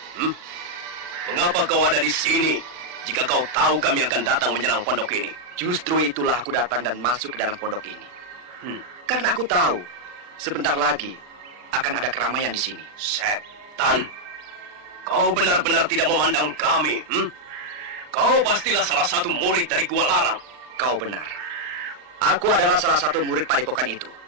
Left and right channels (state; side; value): late; left; 39 ms